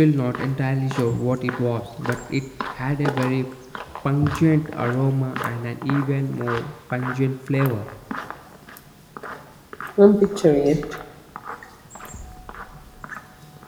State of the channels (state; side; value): identical; both; correlation 1.00